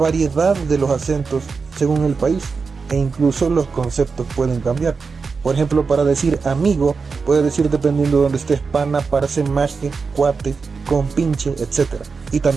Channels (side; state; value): left; quieter; 4.9 dB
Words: de los acentos según el país, e incluso los conceptos pueden cambiar. Por ejemplo, para decir amigo, puede decir dependiendo de donde estés, pana, parce, maje, cuate, compinche, etc. Y